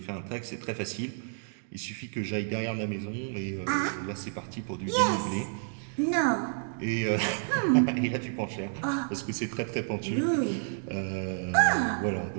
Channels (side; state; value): left; silent; digital silence